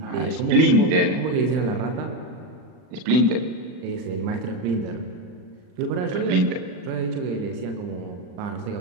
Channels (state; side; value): late; left; 39 ms